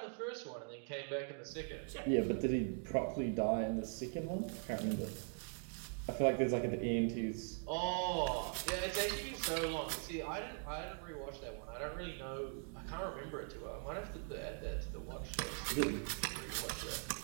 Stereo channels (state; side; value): silent; left; 50 dB below the other